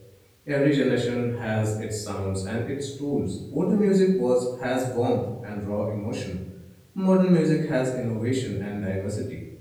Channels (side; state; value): both; identical; correlation 1.00